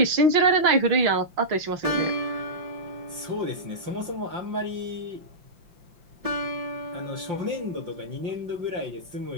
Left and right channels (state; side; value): late; left; 5.7 ms